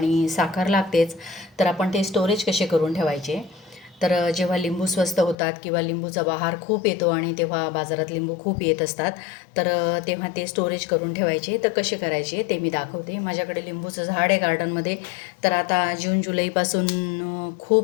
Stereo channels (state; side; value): drops out; right; at 5.4 s